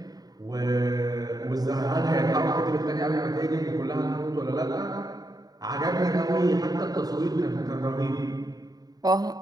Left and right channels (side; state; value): left; late; 0.18 ms